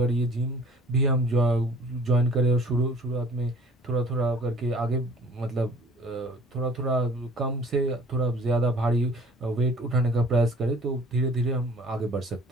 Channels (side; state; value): both; normal; correlation 0.51